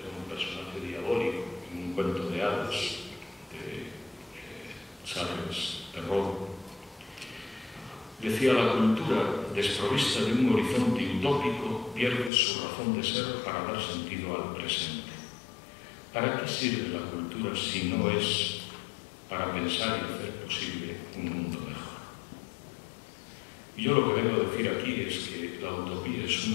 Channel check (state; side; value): drops out; right; at 12.3 s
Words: un personaje diabólico en un cuento de hadas de Charles Perrault. Decía: la cultura desprovista de un horizonte utópico pierde su razón de ser para dar sentido al presente. ¿Para qué sirve la cultura si no es para pensar y hacer posible un mundo mejor? Y yo lo que vengo a decir aquí es que la utopía es